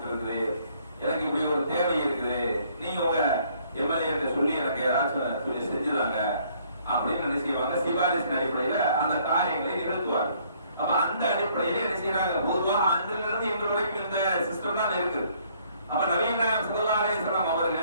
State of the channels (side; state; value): both; inverted; correlation -0.64